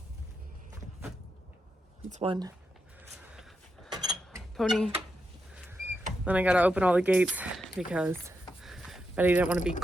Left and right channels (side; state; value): both; normal; correlation 0.85